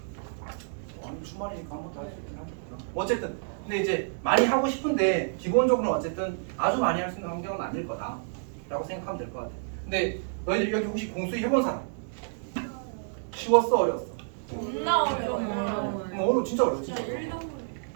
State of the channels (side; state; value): left; silent; digital silence